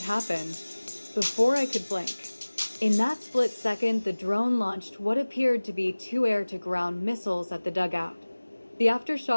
happened. Before I could blink. In that split second, the drone launched what appeared to be 2 air-to-ground missiles at the dugout. The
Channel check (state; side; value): inverted; both; correlation -1.00